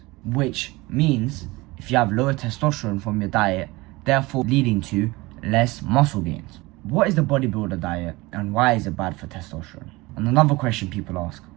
which means if you have lower testosterone from your diet, therefore leading to less muscle gains. What is the bodybuilder diet and why is it bad for testosterone? And another question people ask,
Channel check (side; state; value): left; quieter; 22.0 dB